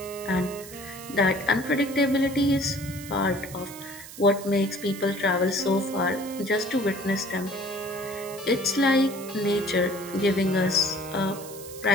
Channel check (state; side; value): noise; right; hiss, 15 dB below the sound